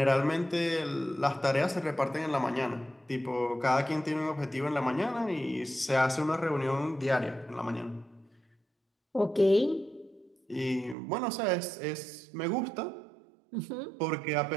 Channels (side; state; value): left; drops out; at 11.0 s